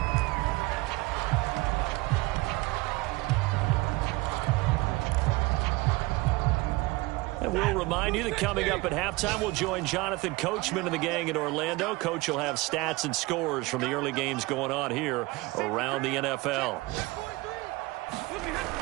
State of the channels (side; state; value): left; quieter; 22.1 dB